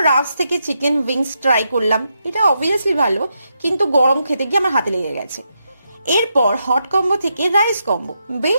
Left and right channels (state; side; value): inverted; both; correlation -0.83